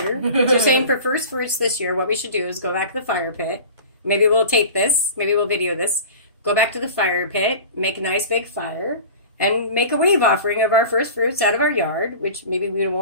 You're saying for first fruits this year, what we should do is go back to the fire pit. Maybe we'll tape this. Maybe we'll video this. Go back to the fire pit, make a nice big fire, and make a wave offering of our first fruits out of our yard, which maybe we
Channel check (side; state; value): both; inverted; correlation -0.37